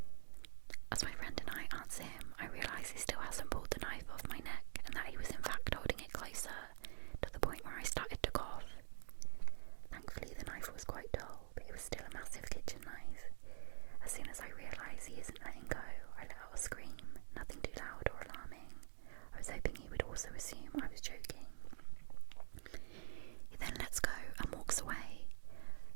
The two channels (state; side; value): silent; left; digital silence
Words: As my friend and I answer him, I realise he still hasn't pulled the knife off my neck and that he was in fact holding it closer, to the point where I started to cough. Thankfully the knife was quite dull, but it was still a massive kitchen knife. As soon as I realise he isn't letting go, I let out a scream, nothing too loud or alarming. I was hoping he would also assume I was joking. He then lets go and walks away.